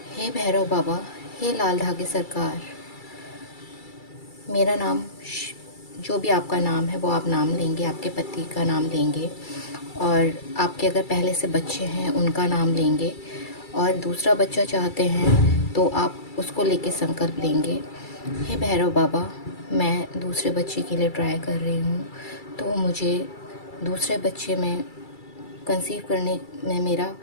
हे भैरव बाबा, हे लाल धागे सरकार, मेरा नाम जो भी आपका नाम है वो आप नाम लेंगे, आपके पति का नाम लेंगे और आपके अगर पहले से बच्चे हैं उनका नाम लेंगे और दूसरा बच्चा चाहते हैं तो आप उसको लेके संकल्प लेंगे। हे भैरव बाबा, मैं दूसरे बच्चे के लिए ट्राई कर रही हूँ, तो मुझे दूसरे बच्चे में कंसीव करने में मेरा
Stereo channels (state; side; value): late; right; 2.3 ms